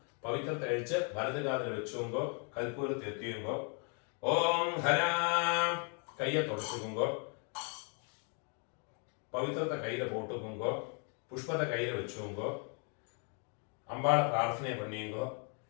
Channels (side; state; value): right; quieter; 39.2 dB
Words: പവിത്രത്തെ അഴിച്ച് വലതുകാലിൽ വെച്ചുകൊണ്ടോ കൽപ്പൂരത്തെ എത്തിയുമ്പോ ഓം ഹരാ കയ്യെ തുടച്ചുകൊണ്ടോ പവിത്രത്തെ കയ്യിലെ പോട്ടുകൊണ്ടോ പുഷ്പത്തെ കയ്യിൽ വെച്ചുകൊണ്ടോ അമ്പാളെ പ്രാർത്ഥനയെ പണിയുമ്പോ